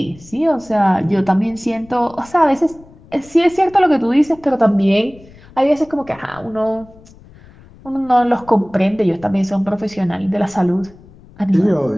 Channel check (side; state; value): left; noise; rumble, 24 dB below the sound